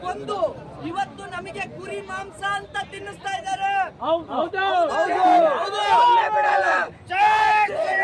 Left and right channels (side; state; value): both; identical; correlation 1.00